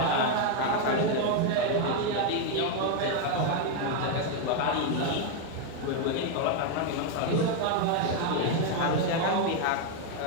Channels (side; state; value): both; different; correlation 0.01